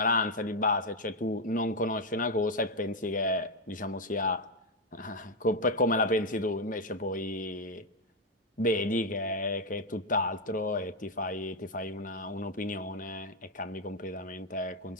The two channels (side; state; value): both; normal; correlation 0.03